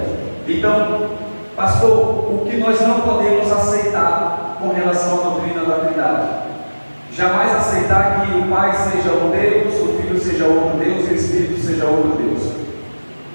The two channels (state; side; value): inverted; both; correlation -1.00